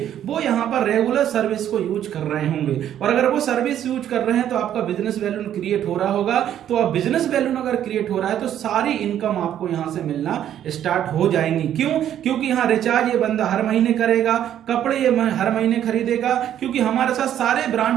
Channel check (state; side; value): quieter; left; 10.7 dB